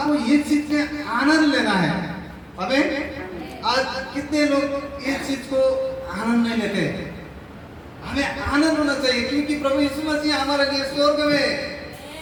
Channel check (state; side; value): identical; both; correlation 1.00